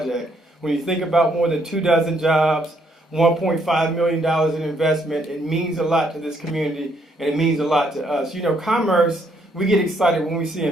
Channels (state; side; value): normal; both; correlation 0.71